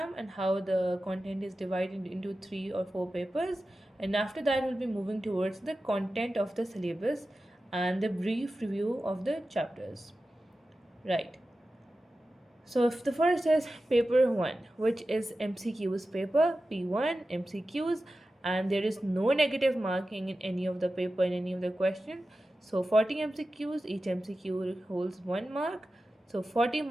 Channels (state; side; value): normal; both; correlation 0.94